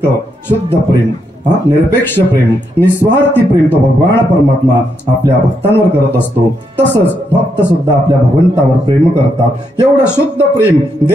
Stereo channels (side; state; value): both; normal; correlation 0.79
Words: शुद्ध प्रेम, निरपेक्ष प्रेम, निस्वार्थी प्रेम तो भगवान परमात्मा आपल्या भक्तांवर करत असतो. तसंच भक्त सुद्धा आपल्या भगवंतावर प्रेम करतात. एवढं शुद्ध प्रेम